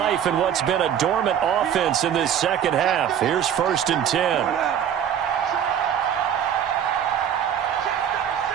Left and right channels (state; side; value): quieter; left; 9.2 dB